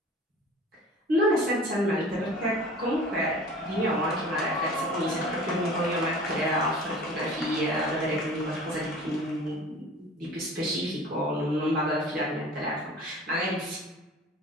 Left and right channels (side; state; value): both; normal; correlation 0.43